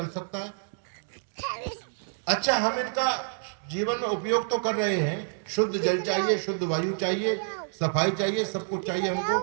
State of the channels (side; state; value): left; silent; digital silence